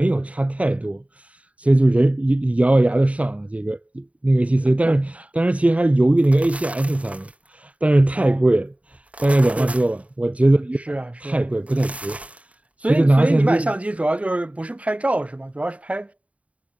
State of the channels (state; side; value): late; left; 0.066 ms